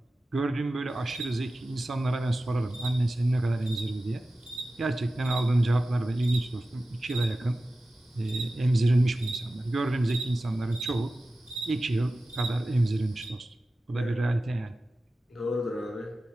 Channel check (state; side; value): normal; both; correlation 0.95